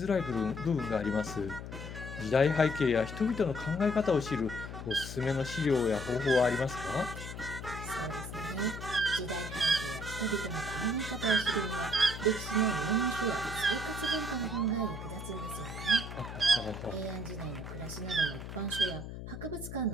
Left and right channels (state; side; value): noise; left; hum, 9 dB below the sound